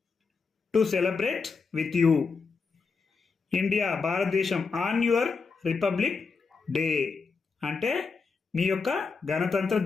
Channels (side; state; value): right; quieter; 4.8 dB